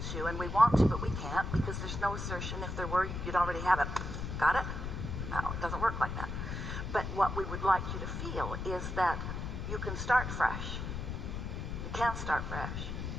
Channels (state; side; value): noise; left; rumble, 4 dB below the sound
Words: you, and we want to, but we can't, because there's no assertion. If there were, you'd already have it. Got it? No, it doesn't work like that. But what we would like you to feel is that you can start fresh. You can start fresh.